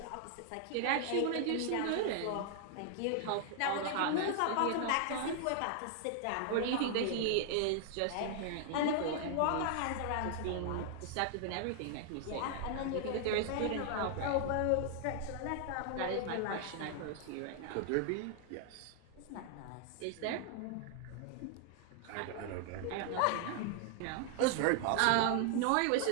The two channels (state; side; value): different; both; correlation 0.00